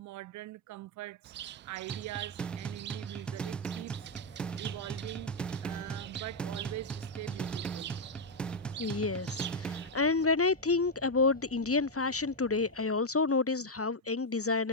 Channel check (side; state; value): both; normal; correlation 0.00